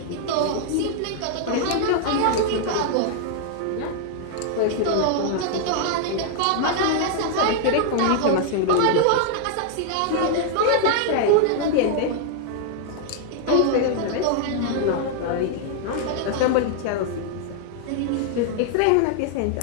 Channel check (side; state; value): both; different; correlation 0.00